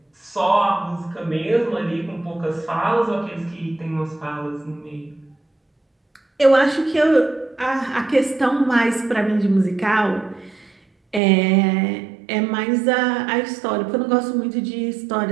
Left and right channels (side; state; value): left; drops out; at 11.2 s